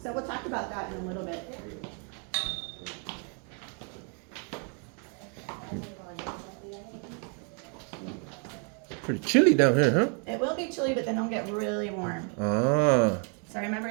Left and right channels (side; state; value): left; quieter; 39.5 dB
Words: So we'll talk about that in a little bit. Pretty chilly down here, huh? It will be chilly, but then it'll get really warm. Ah. So remember